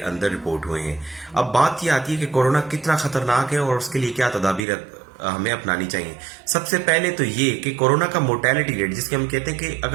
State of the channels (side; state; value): left; drops out; at 4.7 s